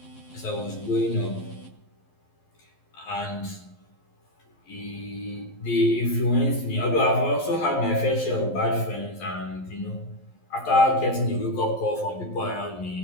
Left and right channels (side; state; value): right; late; 11 ms